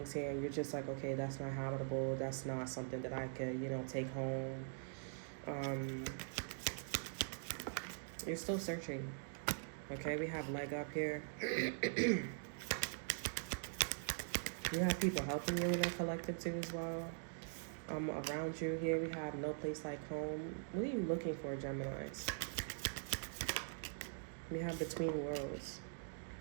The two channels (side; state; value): left; silent; digital silence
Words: here and you're just like, okay, that's not habitable. That's not something that I could, take home. You're still searching. Okay, we have leg up here. You have people helping you in the collective too as well. Around you here, we have no place like home. What are you looking for, Geminis? We have between worlds.